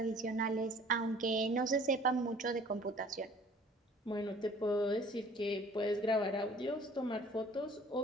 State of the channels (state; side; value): normal; both; correlation 0.52